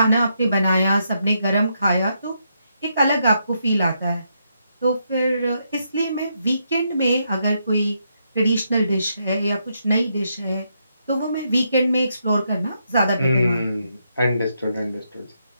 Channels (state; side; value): inverted; both; correlation -0.79